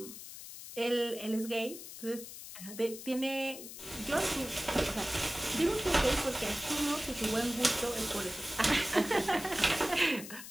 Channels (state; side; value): noise; left; hiss, 12 dB below the sound